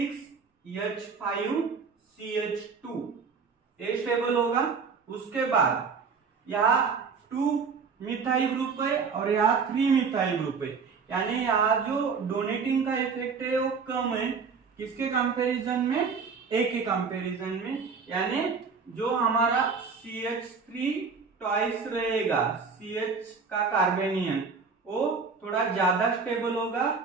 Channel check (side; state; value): left; quieter; 5.3 dB